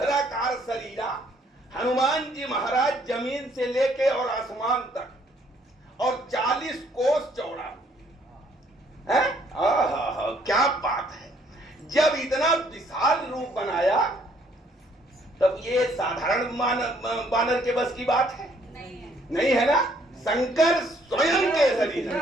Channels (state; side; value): normal; both; correlation 0.65